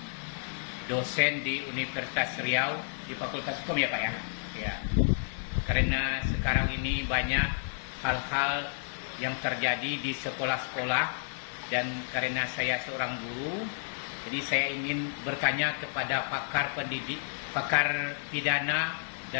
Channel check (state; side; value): silent; right; 57 dB below the other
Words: dosen di Universitas Riau di Fakultas Hukum, ya Pak ya? Ya. Karena sekarang ini banyak hal-hal yang terjadi di sekolah-sekolah, dan karena saya seorang guru, jadi saya ingin bertanya kepada pakar pidana